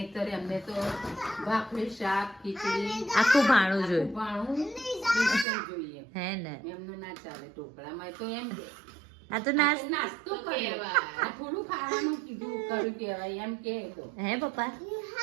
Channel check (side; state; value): left; drops out; at 5.5 s